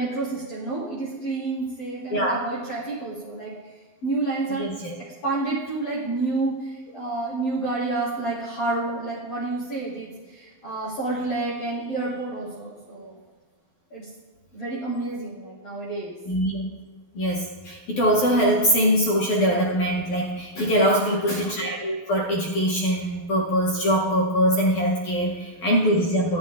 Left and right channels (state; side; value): late; right; 12 ms